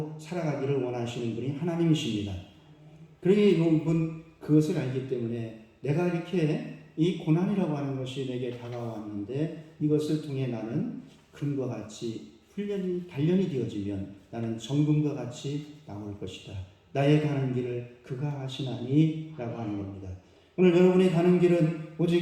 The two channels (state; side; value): identical; both; correlation 1.00